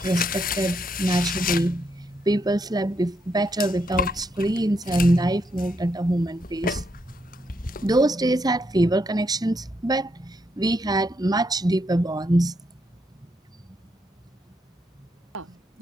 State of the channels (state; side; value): normal; both; correlation 0.78